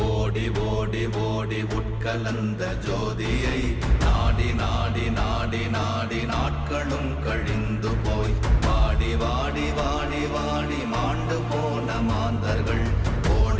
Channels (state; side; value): identical; both; correlation 1.00